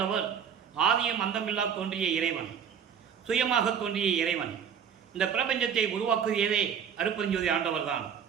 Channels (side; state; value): left; quieter; 7.7 dB